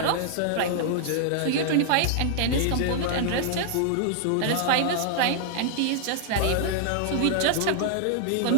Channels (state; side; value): different; both; correlation -0.01